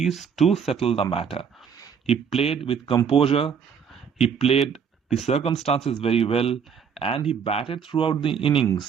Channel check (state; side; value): quieter; left; 6.9 dB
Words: to settle the matter. He played with composure, he played the circumstances very well, and he batted throughout the